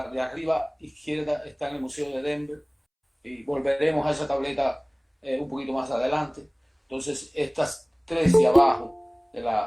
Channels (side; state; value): both; identical; correlation 1.00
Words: arriba izquierda está en el Museo de Denver, y volveremos a esa tableta un poquito más adelante. Entonces, estas 3 de abajo,